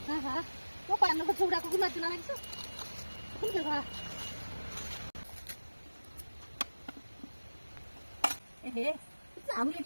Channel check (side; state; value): both; inverted; correlation -1.00